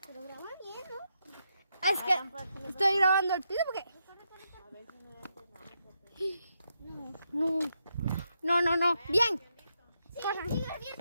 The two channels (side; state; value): both; inverted; correlation -0.82